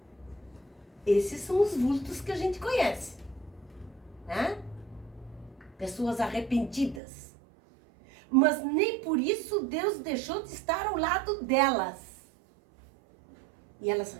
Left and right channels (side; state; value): left; drops out; at 7.0 s